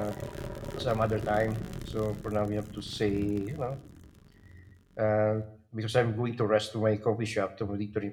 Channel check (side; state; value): both; identical; correlation 1.00